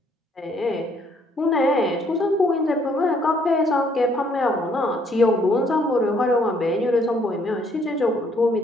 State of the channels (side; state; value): both; normal; correlation 0.66